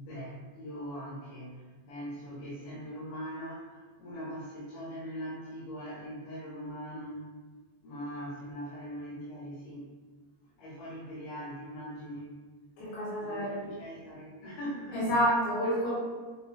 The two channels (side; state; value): right; late; 21 ms